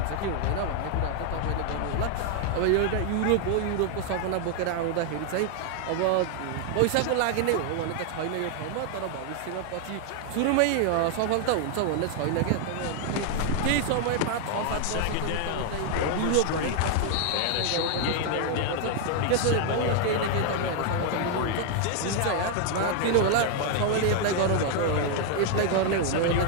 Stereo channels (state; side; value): different; both; correlation 0.00